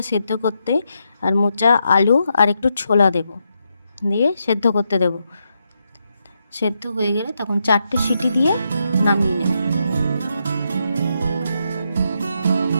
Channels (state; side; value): inverted; both; correlation -0.82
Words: সেদ্ধ করতে, আর মোচা, আলু আর একটু ছোলা দেব, দিয়ে সেদ্ধ করতে দেব। সেদ্ধ হয়ে গেলে তখন 4টে সিটি দিয়ে নামিয়ে নেব।